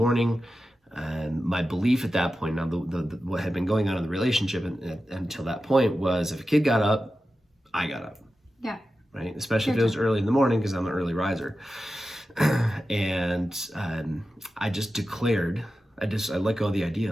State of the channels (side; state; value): both; normal; correlation 0.92